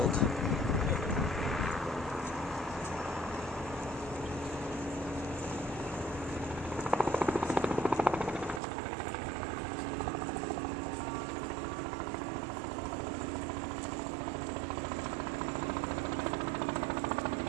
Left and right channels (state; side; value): drops out; left; at 8.6 s